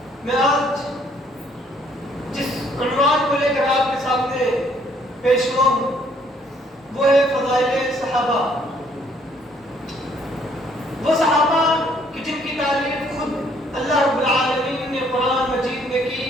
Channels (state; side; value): normal; both; correlation 0.64